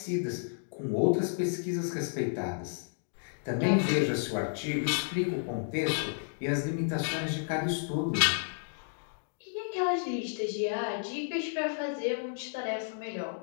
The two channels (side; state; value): right; silent; digital silence